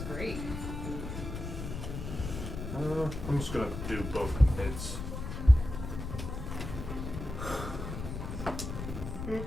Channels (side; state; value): left; noise; rumble, 6 dB below the sound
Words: great. I'm just gonna do both hits.